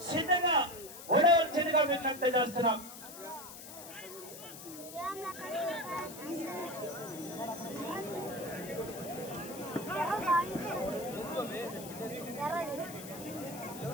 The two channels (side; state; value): left; noise; hiss, 13 dB below the sound